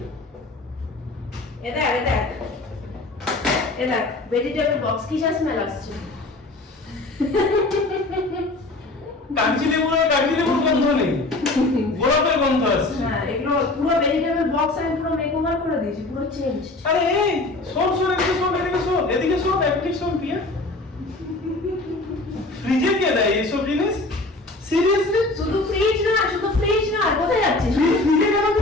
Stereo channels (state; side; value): quieter; right; 3.0 dB